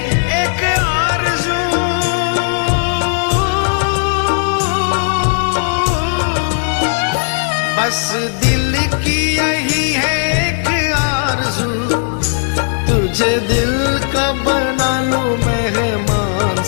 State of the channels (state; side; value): silent; right; digital silence